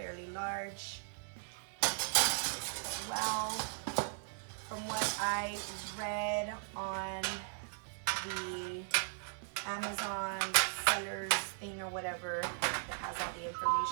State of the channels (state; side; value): silent; left; 53 dB below the other